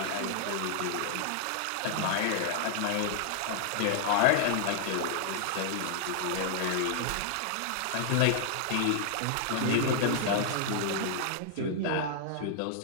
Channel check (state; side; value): different; both; correlation 0.00